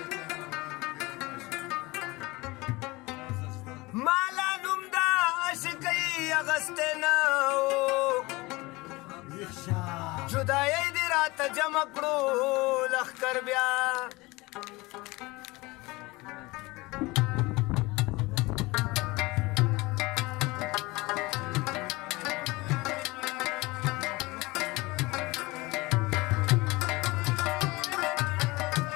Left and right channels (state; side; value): quieter; right; 22.5 dB